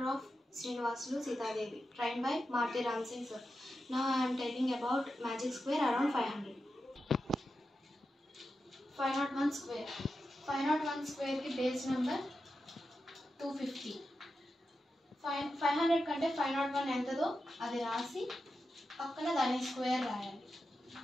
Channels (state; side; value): normal; both; correlation 0.90